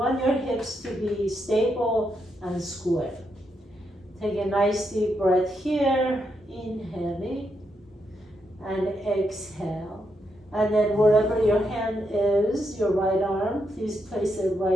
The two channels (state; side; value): normal; both; correlation 0.81